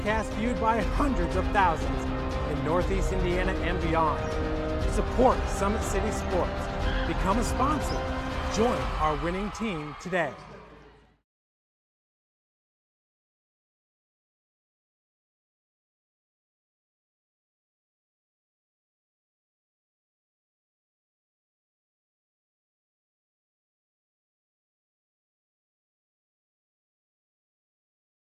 viewed by hundreds of thousands in Northeast Indiana and beyond. Support Summit City Sports. Become a sponsor. Join our winning team today.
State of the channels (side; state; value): both; identical; correlation 1.00